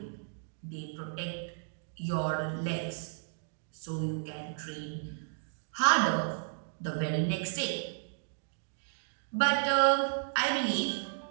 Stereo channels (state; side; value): silent; left; digital silence